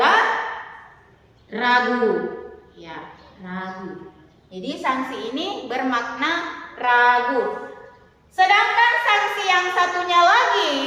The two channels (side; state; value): both; identical; correlation 1.00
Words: ragu, ya, ragu. Jadi sanksi ini bermakna ragu. Sedangkan sanksi yang satunya lagi,